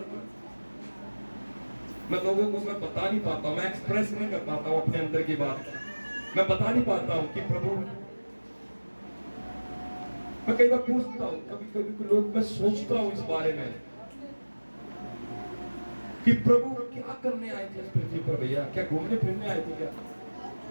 मैं लोगों को मैं बता नहीं पाता हूं, मैं एक्सप्रेस नहीं कर पाता हूं अपने अंदर की बात, मैं बता नहीं पाता हूं कि प्रभु, मैं कई बार पूछता हूं, कभी कभी लोग, मैं सोचता हूं इस बारे में कि प्रभु क्या करने आए थे इस पृथ्वी पर भैया? क्या घूमने फिरने आए थे क्या?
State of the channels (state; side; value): inverted; both; correlation -1.00